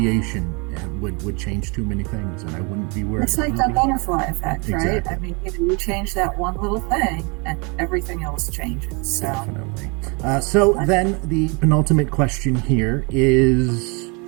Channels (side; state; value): left; quieter; 31.5 dB